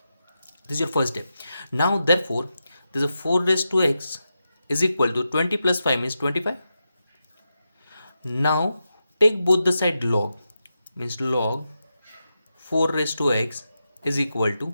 This is your first step. Now, therefore, this is 4 raised to x is equal to 20 plus 5 means 25. Now, take both the side log means log 4 raised to x is equal to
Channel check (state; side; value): inverted; both; correlation -0.88